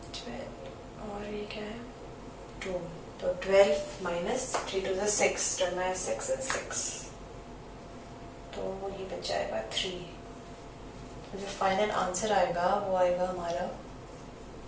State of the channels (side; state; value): both; identical; correlation 1.00